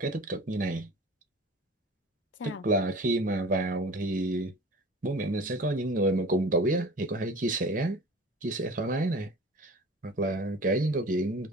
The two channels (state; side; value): normal; both; correlation 0.41